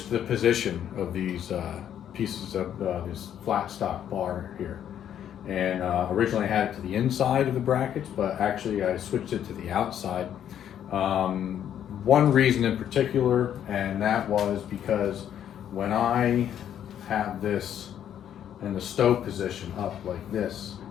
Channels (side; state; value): right; quieter; 9.9 dB